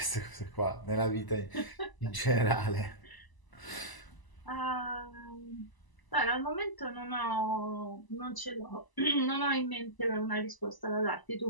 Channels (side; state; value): right; late; 1.0 ms